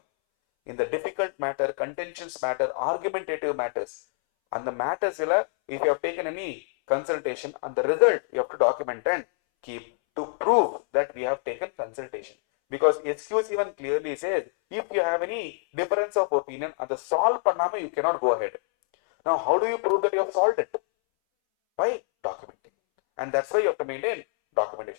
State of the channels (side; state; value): right; silent; 61 dB below the other